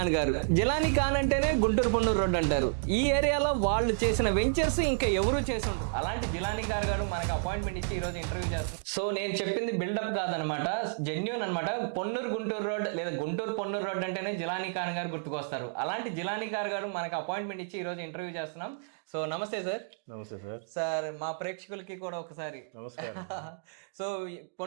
గారు. జిలానీ ఖాన్ అంటేనే గుంటూరు పొన్నూరు రోడ్ అంటారు. ఈ ఏరియాలో వాళ్ళు చేసిన వెంచర్స్ ఇంకా ఎవరు చేసి ఉండరు. అలాంటి జిలానీ ఖాన్ గారు మనకు అపాయింట్మెంట్ ఇచ్చి ఈ రోజు ఇంటర్వ్యూ చేస్తారు. సో నేను చెప్పింది బిల్డప్ కాదనమాట, జెన్యూన్ అనమాట. పొన్నూరు గుంటూరు రోడ్ లేదా గుంటూరు పొన్నూరు రోడ్ అంటేనే జిలానీ ఖాన్ గారు గుర్తుకొస్తారు. అలాంటి జిలానీ ఖాన్ గారు మనకు అపాయింట్మెంట్ ఇచ్చి ఈ రోజు ఇంటర్వ్యూ చేస్తున్నాం. సో నమస్తే సార్. నమస్తే సార్. సార్ మా ప్రేక్షకులకి కూడా ఒకసారి నమస్కారం. సో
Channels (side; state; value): left; silent; digital silence